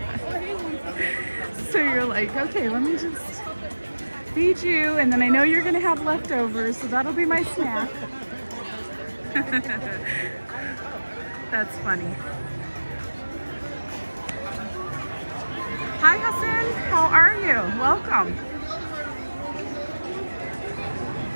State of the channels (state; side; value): inverted; both; correlation -1.00